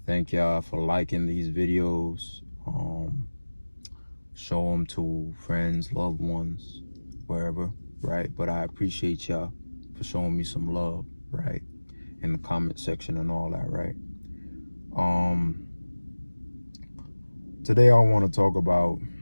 Thank y'all for liking these videos. Show them to friends, loved ones, wherever, right? But I appreciate y'all for showing me some love, right? In the comment section and all that, right? Today I want to talk about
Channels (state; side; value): inverted; both; correlation -1.00